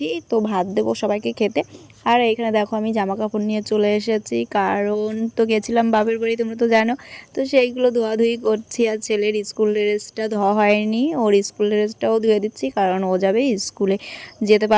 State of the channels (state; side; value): identical; both; correlation 1.00